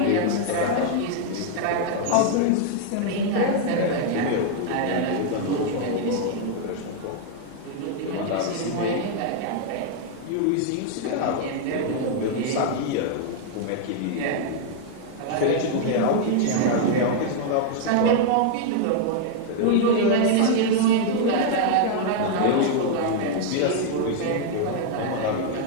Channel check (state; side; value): different; both; correlation 0.00